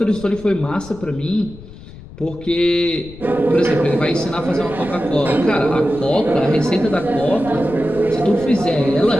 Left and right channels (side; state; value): left; noise; rumble, 17 dB below the sound